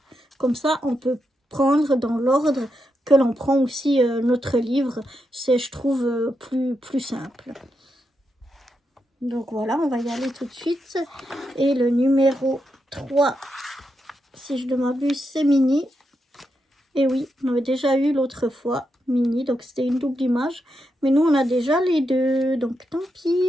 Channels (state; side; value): normal; both; correlation 0.84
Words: Comme ça, on peut prendre dans l'ordre que l'on prend aussi notre livre. C'est, je trouve, plus simple. Donc voilà, on va y aller tout de suite. Et le numéro 3, si je ne m'abuse, c'est Mini. Et oui, on avait déjà eu l'autre fois Mini, donc c'était une double image. Mais nous, on a déjà les deux, donc tant